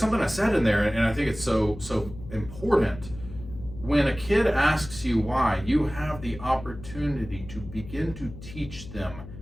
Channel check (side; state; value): left; noise; hum, 14 dB below the sound